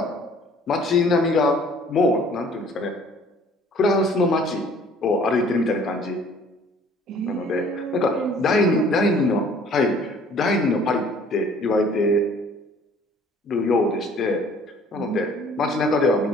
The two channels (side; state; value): both; normal; correlation 0.55